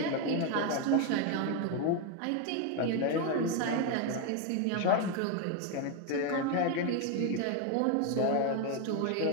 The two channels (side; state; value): both; different; correlation 0.02